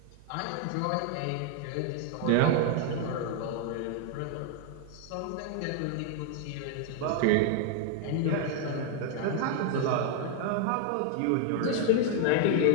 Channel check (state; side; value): different; both; correlation 0.00